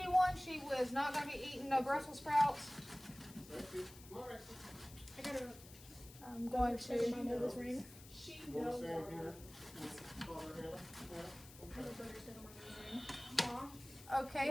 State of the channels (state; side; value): noise; left; hiss, 18 dB below the sound